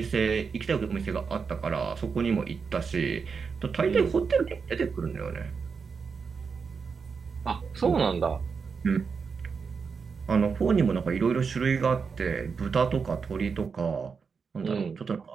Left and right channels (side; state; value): left; quieter; 5.5 dB